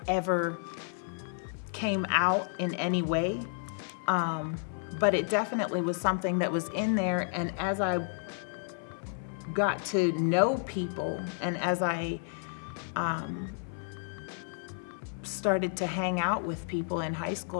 ever came out in any way, but it definitely was something that was in there. And as I got to know people, and as I started to hang out with people in high school,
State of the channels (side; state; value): right; silent; 57 dB below the other